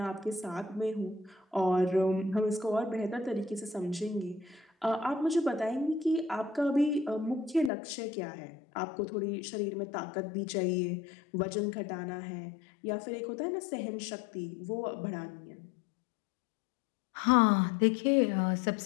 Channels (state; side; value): drops out; right; at 7.7 s